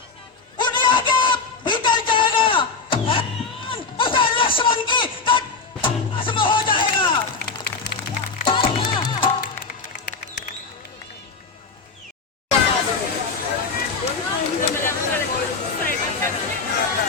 उड़िया के भीतर जाएगा। उसे लक्ष्मण की भस्म हो जाएगा।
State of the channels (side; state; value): right; quieter; 4.5 dB